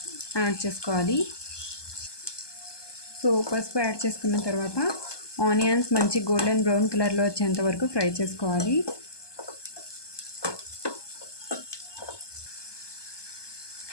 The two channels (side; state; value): right; late; 1.2 ms